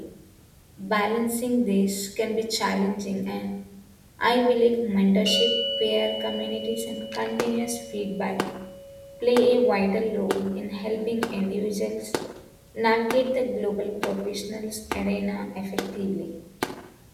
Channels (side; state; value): both; identical; correlation 1.00